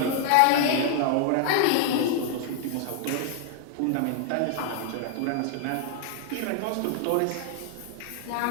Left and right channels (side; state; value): both; different; correlation 0.00